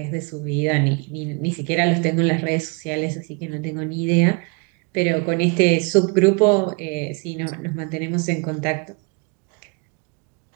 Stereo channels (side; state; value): left; quieter; 32.4 dB